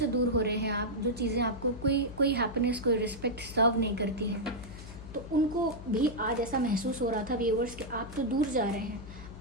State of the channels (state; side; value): noise; left; hum, 14 dB below the sound